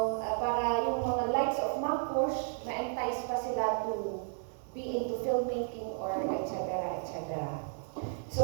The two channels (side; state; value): left; silent; digital silence